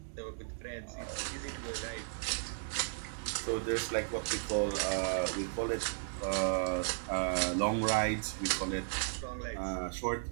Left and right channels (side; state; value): left; silent; digital silence